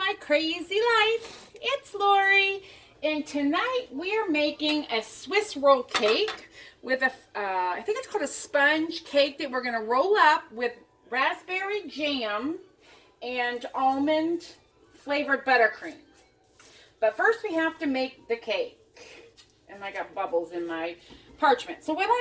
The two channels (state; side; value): identical; both; correlation 1.00